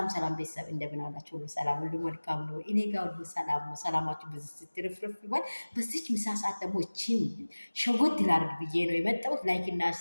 ቤተሰብ እንደምን አላችሁ? ሁሉ ሰላም፣ ሁሉ መልካም ነው። እኔ ጋር ሁሉ ሰላም ነው። ሰላማችሁ በዚህ ስትርፍርፍ ይባል። በዚች ምሳ ሰዓት ደግሞ እቺን ሸጎት ላድርግ ብዬ ነው የመጣሁት። ላይክ እና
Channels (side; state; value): both; inverted; correlation -1.00